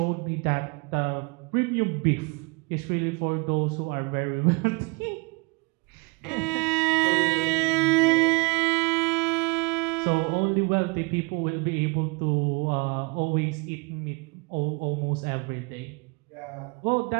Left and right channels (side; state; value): left; quieter; 29.5 dB